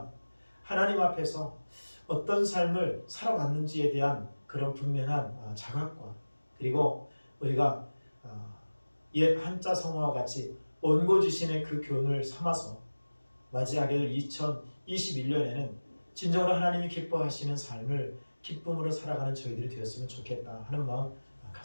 하나님 앞에서 어떤 삶을 살아왔는지에 대한 그런 분명한 자각과, 그리고 우리가 옛 한자 성어와 같이 온고지신의 그 교훈을 삼아서 맞이하게 될 2021년에는 진정으로 하나님이 기뻐하시는 삶을 기쁨으로 살아가는 저희들이 되었으면 좋겠다 하는 마음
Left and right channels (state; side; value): inverted; both; correlation -1.00